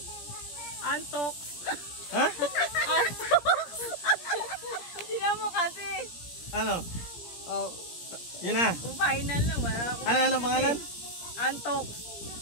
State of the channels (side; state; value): right; late; 17 ms